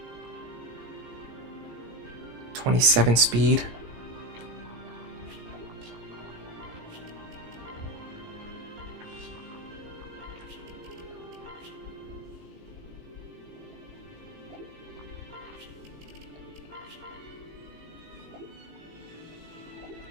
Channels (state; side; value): late; left; 18 ms